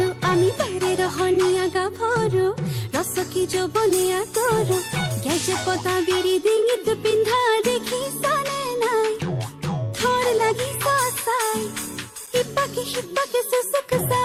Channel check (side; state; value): both; identical; correlation 1.00